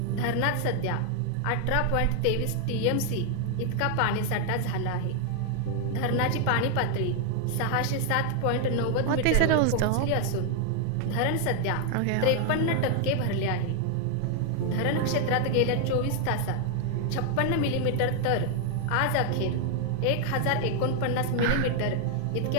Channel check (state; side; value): different; both; correlation 0.00